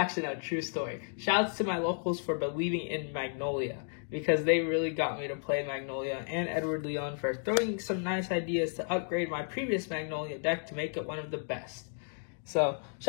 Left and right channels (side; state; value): right; silent; 56 dB below the other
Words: no, true story. Shouts to my locals for believing in Magnolia, because they really got me to play Magnolia, and Edward Leon for throwing some nice ideas to upgrade my previous Magnolia deck to make it one of the best. So,